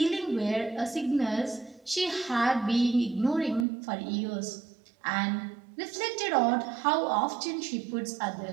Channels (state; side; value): drops out; left; at 3.7 s